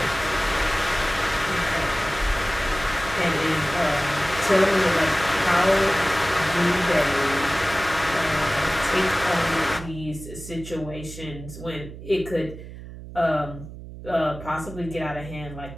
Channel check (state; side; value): noise; right; hum, 13 dB below the sound